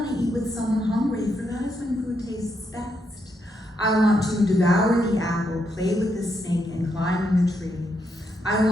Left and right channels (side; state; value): both; normal; correlation 0.79